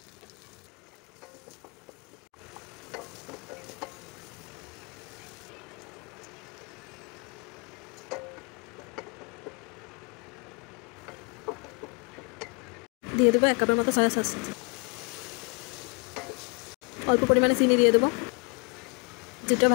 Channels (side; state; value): right; quieter; 32.9 dB